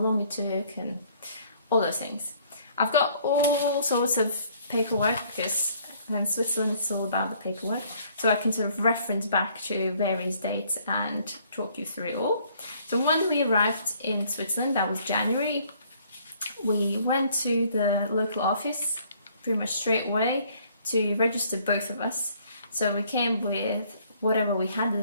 it took and all those things. I've got all sorts of paperwork because in Switzerland it's all about the paperwork, so I can sort of reference back to various dates and talk you through it all. So when we arrived in Switzerland, that was January, we went to the local office pretty much straight away to register both of us. So we came with whatever we had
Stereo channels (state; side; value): inverted; both; correlation -0.61